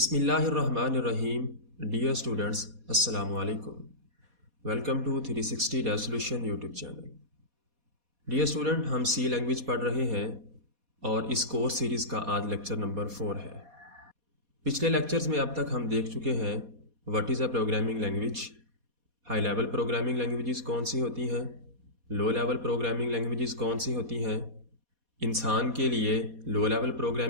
Dear students, अस्सलामु अलैकुम। Welcome to 360 dev solution YouTube channel. Dear student, हम सी लैंग्वेज पढ़ रहे हैं और इस कोर्स सीरीज़ का आज लेक्चर नंबर 4 है। पिछले लेक्चर्स में अब तक हम देख चुके हैं what is a programming language, high level programming languages कौन सी होती हैं, लो लेवल प्रोग्रामिंग लैंग्वेजेस कौन सी होती हैं, इंसान के लिए लो लेवल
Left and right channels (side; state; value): left; late; 4.2 ms